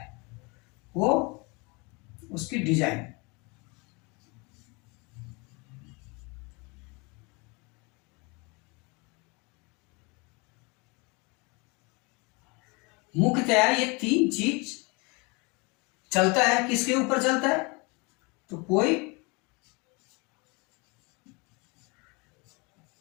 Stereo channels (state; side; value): quieter; right; 29.1 dB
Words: वो उसकी डिजाइन। मुख्यतया ये तीन चीज चलता है, किसके ऊपर चलता है, तो कोई